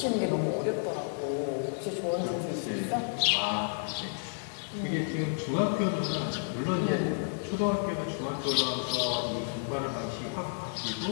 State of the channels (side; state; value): right; silent; digital silence